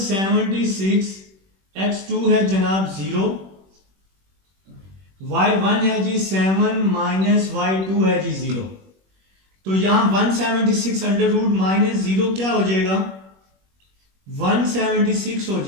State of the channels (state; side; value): late; left; 21 ms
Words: x2 है जनाब 0, y1 है जी 7 माइनस y2 है जी 0। तो यहां 176 अंडर रूट माइनस 0 क्या हो जाएगा, 176 हो